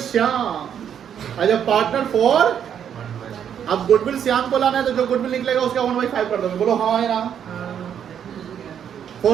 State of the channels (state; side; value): quieter; left; 8.8 dB